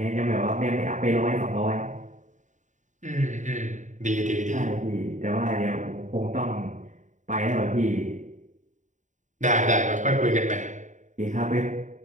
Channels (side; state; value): left; late; 0.36 ms